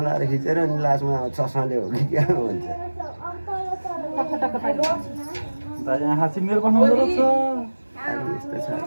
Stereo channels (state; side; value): inverted; both; correlation -1.00